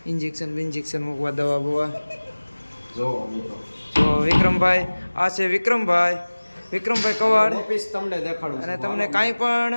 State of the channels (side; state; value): both; inverted; correlation -1.00